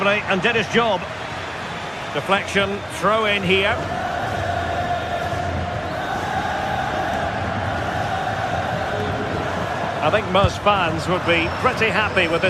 and did his job. Deflection, throw in here. I think most fans would be pretty happy with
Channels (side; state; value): both; identical; correlation 1.00